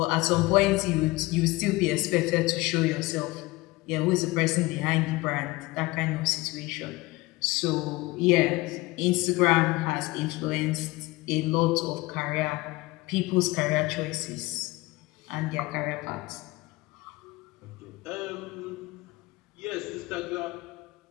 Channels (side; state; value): right; quieter; 21.3 dB